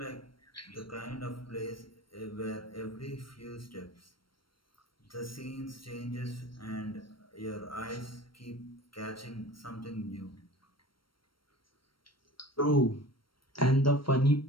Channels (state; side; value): late; right; 0.73 ms